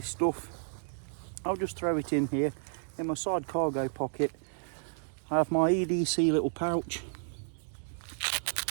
stuff, I'll just throw it in here. In my side cargo pocket, I have my EDC little pouch,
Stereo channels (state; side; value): silent; left; digital silence